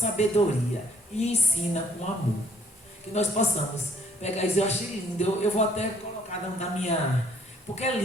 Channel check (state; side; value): normal; both; correlation 0.64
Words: e ensina com amor. Que nós possamos pegar isso, eu achei lindo, eu vou até colocar na minha... Porque é